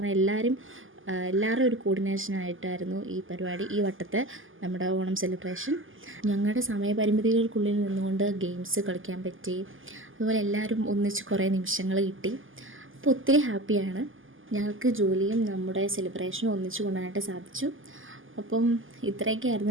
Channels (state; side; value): late; left; 0.58 ms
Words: എല്ലാവരും ഒരു കോർഡിനേഷനായിട്ടായിരുന്നു ഈ പരിപാടി, ഈ വട്ടത്തെ നമ്മുടെ ഓണം സെലിബ്രേഷൻ. ഞങ്ങളുടെ സമയപരിമിതികൾക്കുള്ളിൽ നിന്നുകൊണ്ട് ഗെയിംസ് കളിക്കാൻ പറ്റി. അതുപോലെ എല്ലാവരും ഒന്നിച്ച് കുറേ നിമിഷങ്ങൾ കിട്ടി. അപ്പോൾ ഒത്തിരി ഹാപ്പിയാണ്. ഞങ്ങൾക്ക് ജോലിയും നമ്മുടെ സെലിബ്രേഷനും ഒന്നിച്ച് കൊണ്ടുവരാനായിട്ട് സാധിച്ചു. അപ്പം